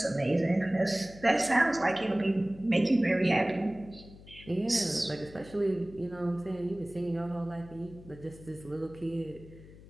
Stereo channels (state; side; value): noise; left; hum, 19 dB below the sound